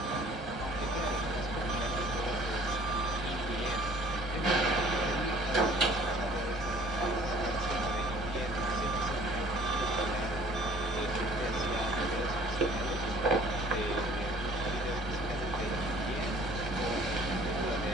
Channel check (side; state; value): both; normal; correlation 0.53